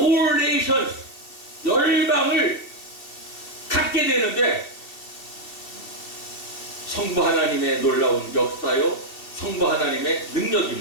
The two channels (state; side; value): late; right; 2.6 ms